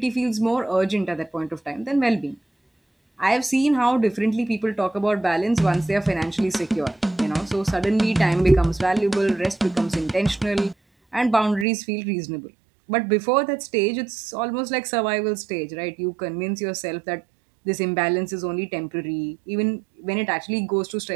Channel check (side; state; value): left; drops out; at 11.7 s